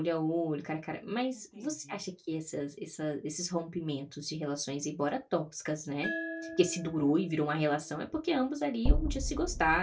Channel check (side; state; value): both; identical; correlation 1.00